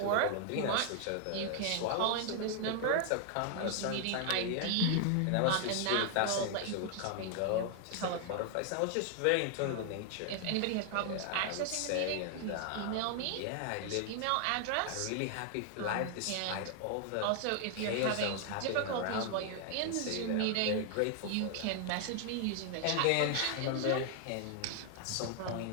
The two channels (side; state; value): both; different; correlation 0.00